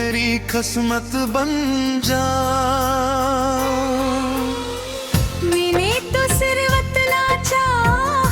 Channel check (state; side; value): identical; both; correlation 1.00